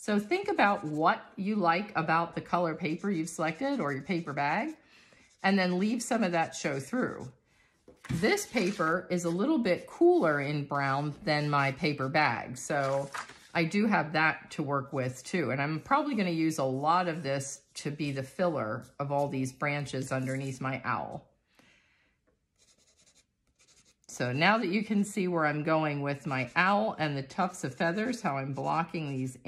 think about what you like about the color paper you've selected or your paper bag, and then leave some of that show through. This paper is a little bit cooler in brown than my paper bag, so I do have that to work with too. And I'm probably going to use a lot of this to be the filler of all these branches underneath my owl. So now that you can see where I'm going with my owl and the tufts of feathers, how I'm blocking these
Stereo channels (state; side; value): identical; both; correlation 1.00